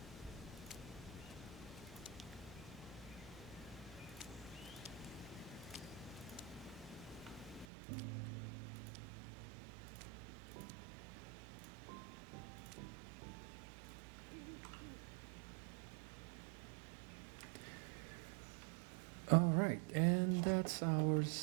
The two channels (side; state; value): left; drops out; at 7.7 s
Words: All right, and that's our